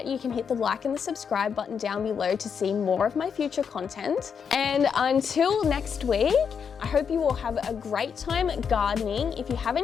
you can hit the like and the subscribe button down below to see more of my future content. And until next week, I hope you all have a great time gardening. If you have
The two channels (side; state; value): right; quieter; 6.7 dB